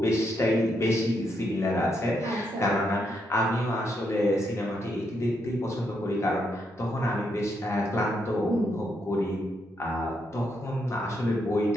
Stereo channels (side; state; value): both; normal; correlation 0.79